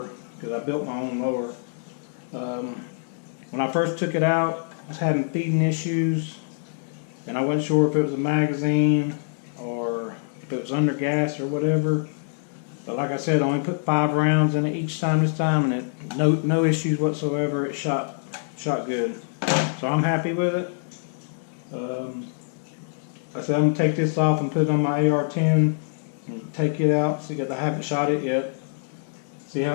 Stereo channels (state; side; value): silent; right; 62 dB below the other